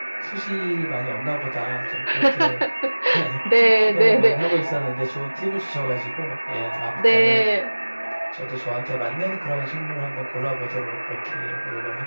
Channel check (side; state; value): both; inverted; correlation -1.00